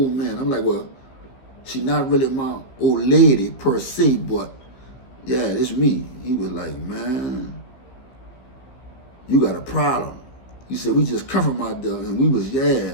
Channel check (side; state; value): right; late; 15 ms